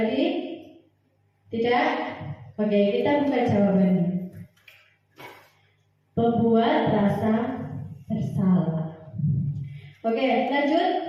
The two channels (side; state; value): both; identical; correlation 1.00